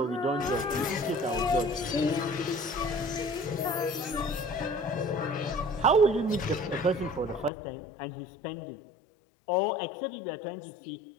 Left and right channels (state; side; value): drops out; right; at 7.5 s